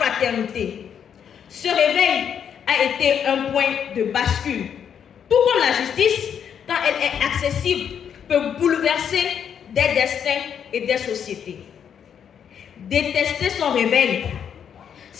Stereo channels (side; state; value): right; quieter; 8.2 dB